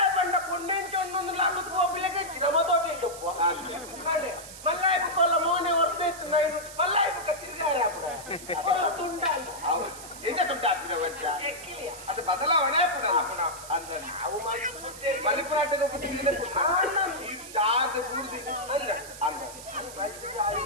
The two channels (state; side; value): noise; right; hiss, 14 dB below the sound